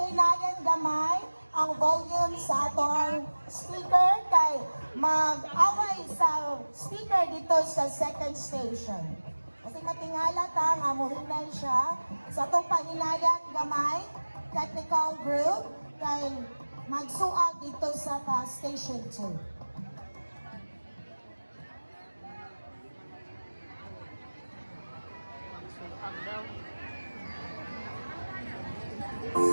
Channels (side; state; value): both; inverted; correlation -1.00